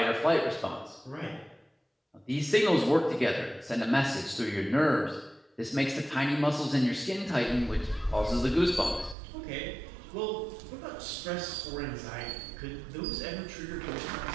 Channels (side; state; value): left; drops out; at 9.2 s